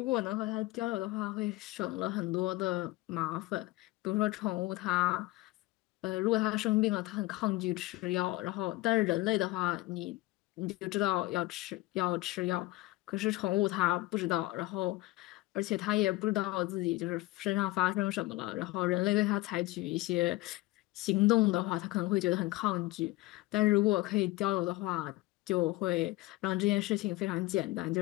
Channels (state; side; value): quieter; right; 19.1 dB